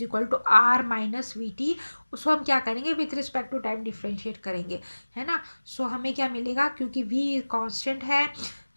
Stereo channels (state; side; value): inverted; both; correlation -1.00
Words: equal to R minus V T, उसको हम क्या करेंगे, with respect to time differentiate करेंगे, है ना। सो हमें क्या मिलेगा, क्योंकि वी कांस्टेंट है,